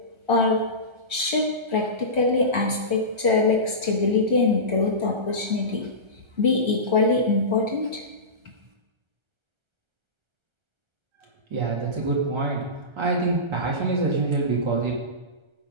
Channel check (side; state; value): left; late; 1.3 ms